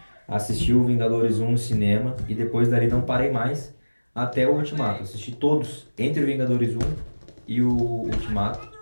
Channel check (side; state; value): both; inverted; correlation -1.00